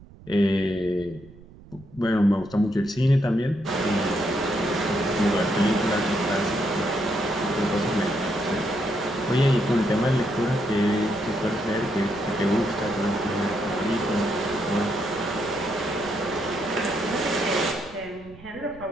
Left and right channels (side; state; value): right; noise; rumble, 21 dB below the sound